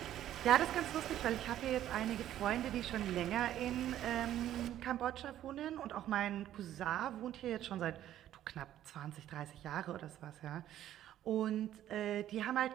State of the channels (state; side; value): quieter; left; 12.2 dB